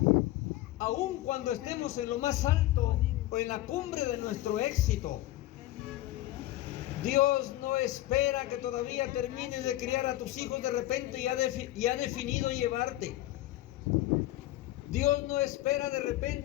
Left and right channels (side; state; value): right; quieter; 15.8 dB